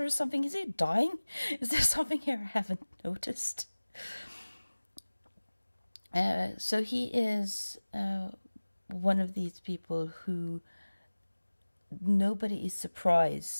or something? Is he dying? Is there something here I haven't noticed? So he is one of these people who nobody is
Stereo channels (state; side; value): inverted; both; correlation -1.00